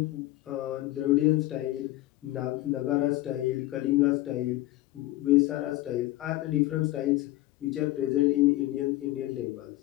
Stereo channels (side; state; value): right; quieter; 16.9 dB